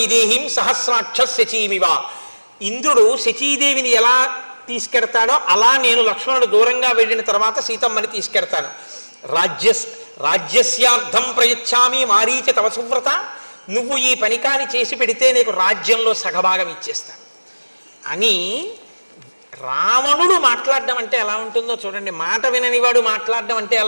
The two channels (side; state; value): both; inverted; correlation -1.00